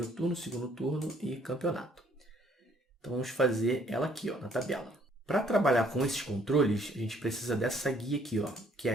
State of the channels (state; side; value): normal; both; correlation 0.63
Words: turno, segundo turno e campeonato. Então, vamos fazer ela aqui na tabela. Para trabalhar com esses controles, a gente precisa dessa guia aqui, que é